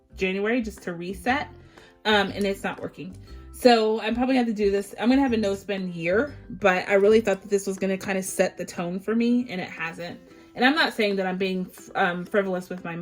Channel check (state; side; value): identical; both; correlation 1.00